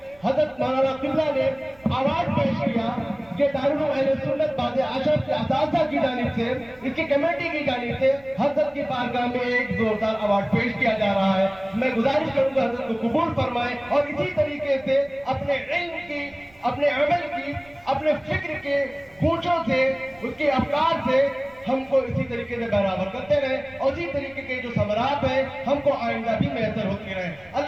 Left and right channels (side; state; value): right; noise; rumble, 27 dB below the sound